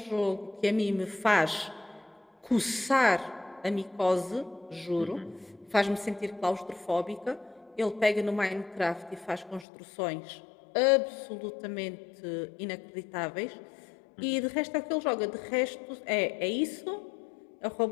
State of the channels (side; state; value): right; drops out; at 9.7 s